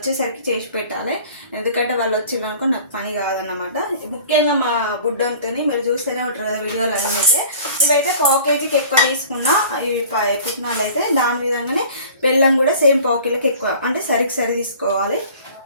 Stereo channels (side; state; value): both; inverted; correlation -0.46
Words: చేసి పెట్టాలి, ఎందుకంటే వాళ్ళు వచ్చినాక నాకు పని కాదన్నమాట. ముఖ్యంగా మా బుడ్డంతో మీరు చూస్తూనే ఉంటారు కదా వీడియోలు అయితే. ఇవైతే పావు కేజీకి ఎక్కువ తీసుకున్నా ఈ పుట్నాలు అయితే. దాని విధంగానే బెల్లం కూడా సేమ్ పావు కిలోకి ఎక్కువ, అంటే సరి తీసుకోవాలి.